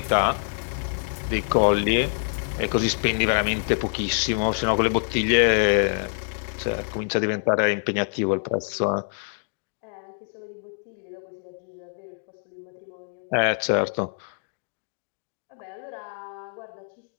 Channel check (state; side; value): silent; right; digital silence